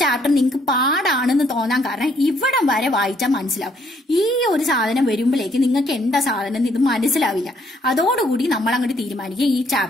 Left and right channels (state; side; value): normal; both; correlation 0.68